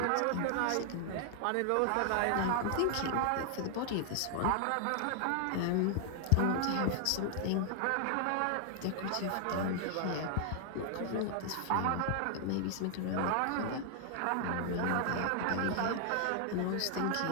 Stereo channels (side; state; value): both; different; correlation 0.00